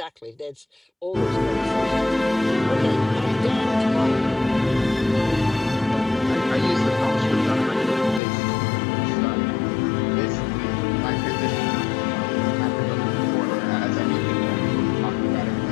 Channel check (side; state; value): right; drops out; at 8.2 s